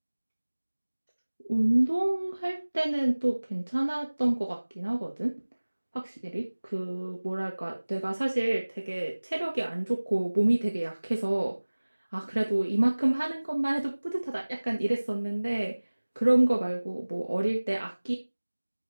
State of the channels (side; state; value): both; inverted; correlation -1.00